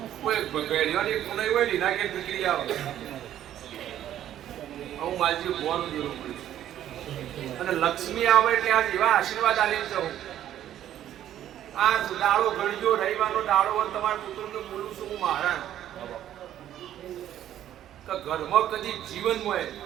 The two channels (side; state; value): left; quieter; 11.6 dB